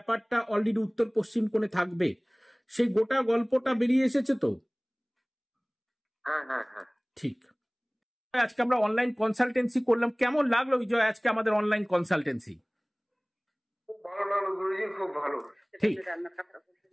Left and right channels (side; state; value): both; identical; correlation 1.00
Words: অলরেডি উত্তর পশ্চিম কোণে থাকবে, সেই গোটা গল্পটা বেরিয়ে এসেছে তো? হ্যাঁ হ্যাঁ হ্যাঁ। ঠিক। আজকে আমরা অনলাইন কনসালটেন্সি করলাম, কেমন লাগলো বিজয় আজকে আমাদের অনলাইন কনসালটেন্সি? খুব ভালো লাগলো গুরুজি, খুব ভালো। ঠিক।